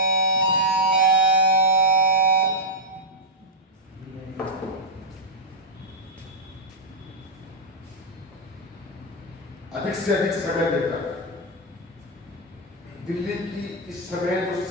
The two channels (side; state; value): both; normal; correlation -0.05